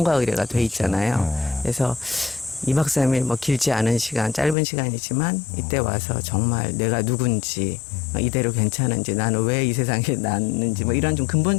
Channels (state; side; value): drops out; right; at 4.5 s